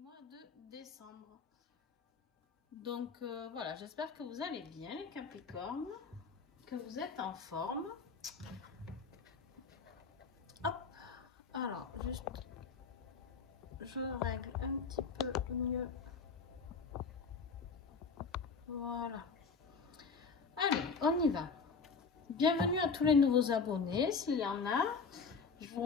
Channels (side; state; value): right; quieter; 5.0 dB